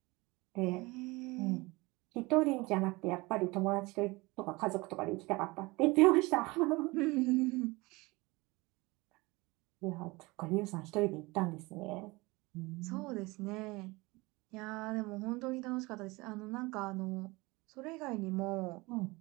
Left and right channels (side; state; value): left; quieter; 23.3 dB